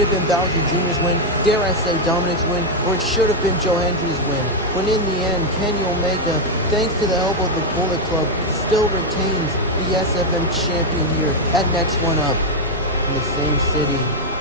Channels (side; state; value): both; normal; correlation 0.02